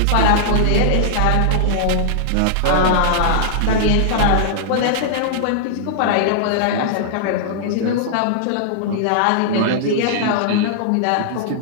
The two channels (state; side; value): different; both; correlation -0.01